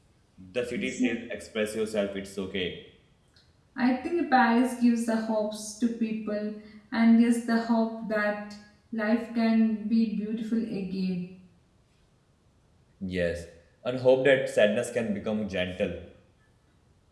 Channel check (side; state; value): both; identical; correlation 1.00